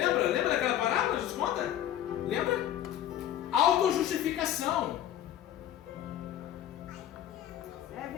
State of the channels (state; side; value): quieter; right; 11.6 dB